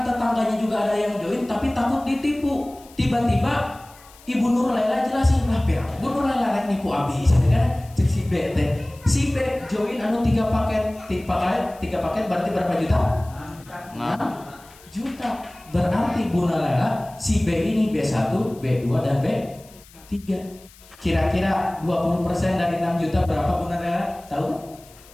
tetangganya juga ada yang join, tapi takut ditipu. Tiba-tiba Ibu Nurlela jelasin lah, Bu Nurlela rek nipu abis, kan? Cek si B teh. Si B join 3 paket, 3 paket berarti berapa juta? 6 juta. Berarti Bu Nurlela si B ini B1, B2 dan B3. Kira-kira 20% dari 6 juta berapa Bu Nurlela? Tahu?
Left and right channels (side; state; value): left; noise; hiss, 24 dB below the sound